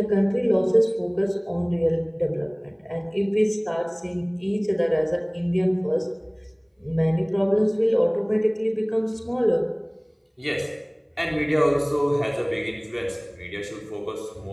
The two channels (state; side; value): identical; both; correlation 1.00